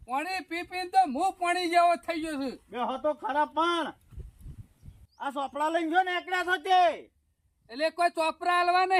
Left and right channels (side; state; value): both; identical; correlation 1.00